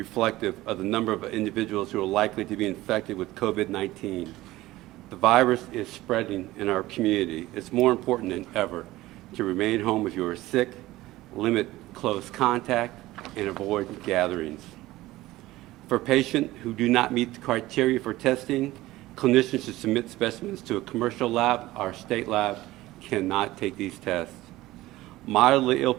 of the number of individuals who are likely to be infected with COVID-19. The virus is spreading in our community. It's more important than ever to remain home if you are sick, limit close contact, and avoid gatherings. For patients who do not meet the criteria for testing, clinicians should submit specimens to a commercial lab. Our state lab cannot take these tests. Mildly ill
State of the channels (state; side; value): quieter; left; 17.4 dB